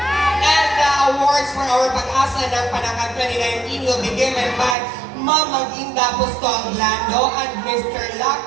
And the awards for our Pag-asa ng Panacan 2019 will be given by Ma'am Maginda Bustong Lando and Mr.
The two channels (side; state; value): left; drops out; at 4.8 s